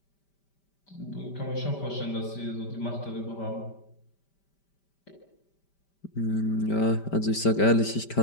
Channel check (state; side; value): late; right; 5.1 ms